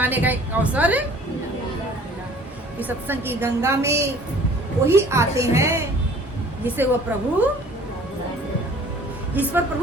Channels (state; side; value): normal; both; correlation 0.51